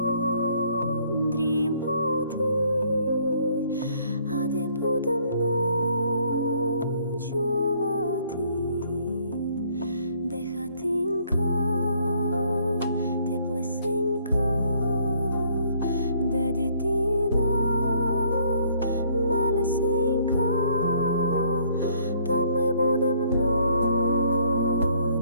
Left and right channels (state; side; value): inverted; both; correlation -0.64